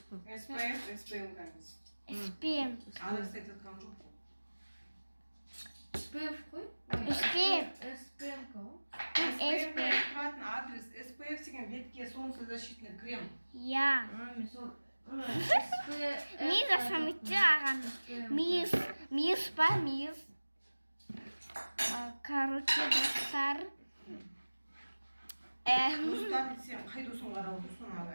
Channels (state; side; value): inverted; both; correlation -1.00